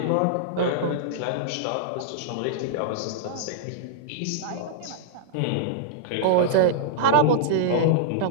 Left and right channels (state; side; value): different; both; correlation -0.01